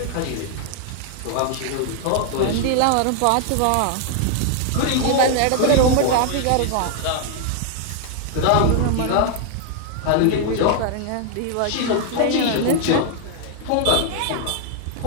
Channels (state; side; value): different; both; correlation 0.00